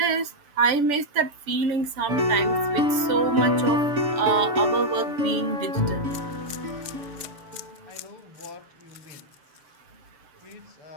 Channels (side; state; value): left; late; 6.9 ms